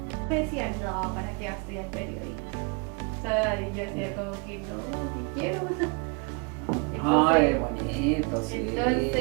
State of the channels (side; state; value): left; quieter; 33.4 dB